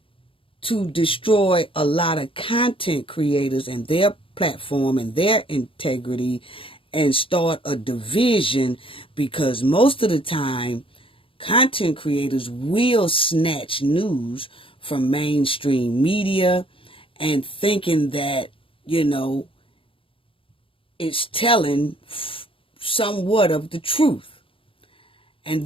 to destroy a lot of content creators and their platform and their integrity and start a division, because most of the time content creators will snatch news from mainstream media and thinking that, you know, it's telling somewhat of the truth. And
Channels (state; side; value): late; right; 0.26 ms